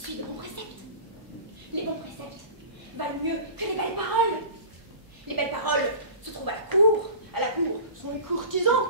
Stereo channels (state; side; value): late; left; 1.0 ms